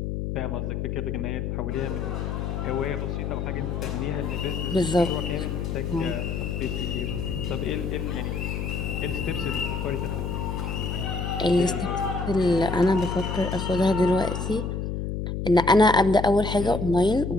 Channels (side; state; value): left; noise; hum, 3 dB below the sound